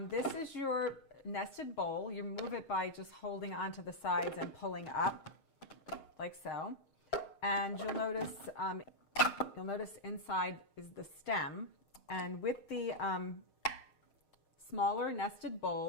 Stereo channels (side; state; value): right; late; 6.5 ms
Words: this is your nested bowl. You move it by just holding onto the sides and pulling up like so. And you'll notice inside is the stem. And with the smaller nested